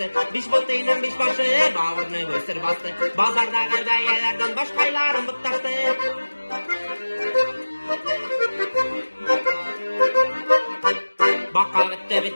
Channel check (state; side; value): inverted; both; correlation -1.00